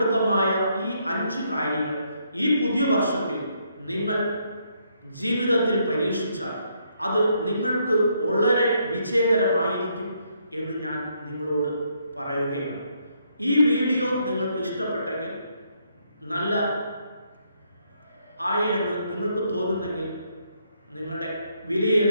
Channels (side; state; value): both; inverted; correlation -0.74